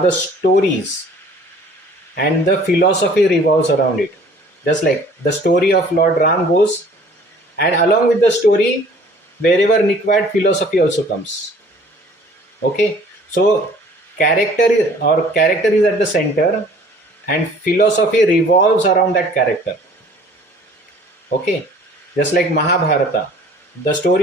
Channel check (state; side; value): normal; both; correlation 0.52